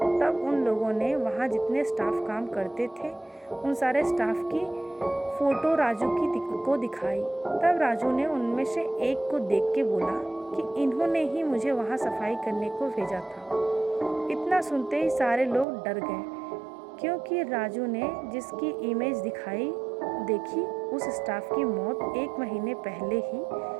तब उन लोगों ने वहाँ जितने स्टाफ काम करते थे उन सारे स्टाफ की फ़ोटो राजू को दिखाई। तब राजू ने उनमें से एक को देख के बोला कि इन्होंने ही मुझे वहाँ सफाई करने को भेजा था। इतना सुनते ही सारे लोग डर गए, क्योंकि राजू ने जिसकी इमेज देखी उस स्टाफ की मौत 1 महीने पहले ही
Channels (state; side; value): drops out; left; at 15.7 s